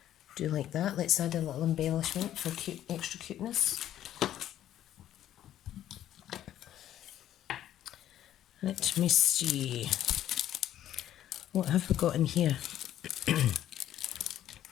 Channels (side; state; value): right; quieter; 11.9 dB